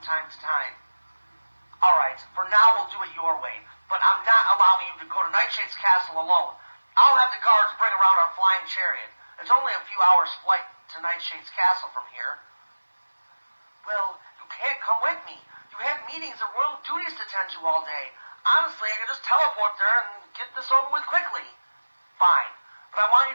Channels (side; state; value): both; inverted; correlation -1.00